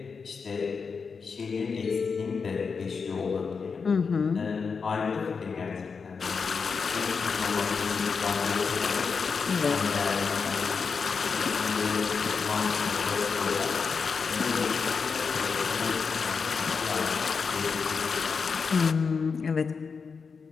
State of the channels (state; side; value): quieter; right; 5.4 dB